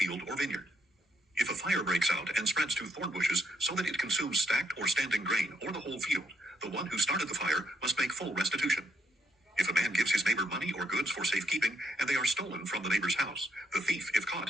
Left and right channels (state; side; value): normal; both; correlation 0.74